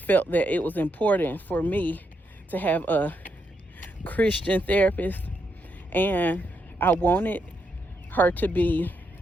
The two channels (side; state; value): both; normal; correlation 0.80